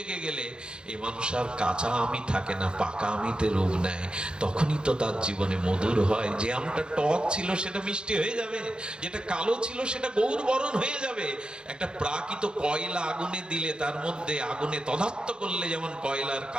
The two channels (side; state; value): left; late; 0.049 ms